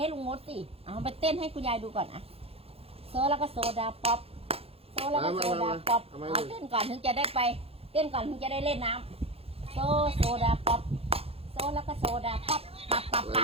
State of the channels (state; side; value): late; left; 0.28 ms